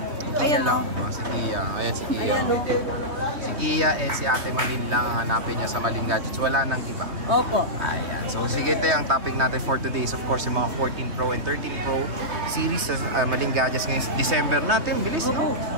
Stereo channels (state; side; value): late; left; 3.2 ms